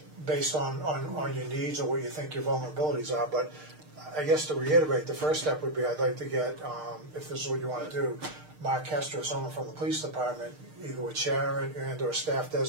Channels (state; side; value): late; left; 6.5 ms